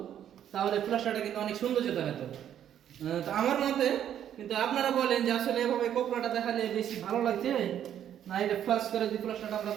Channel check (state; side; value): quieter; left; 10.1 dB